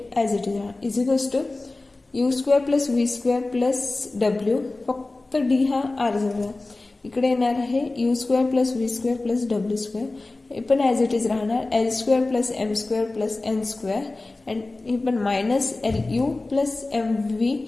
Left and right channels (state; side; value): quieter; right; 3.1 dB